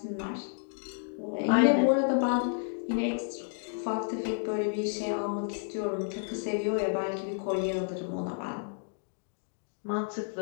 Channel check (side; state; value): right; silent; digital silence